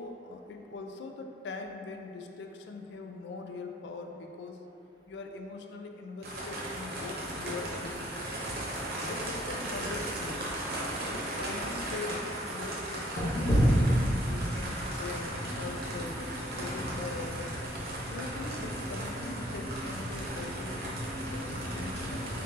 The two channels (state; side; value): normal; both; correlation 0.60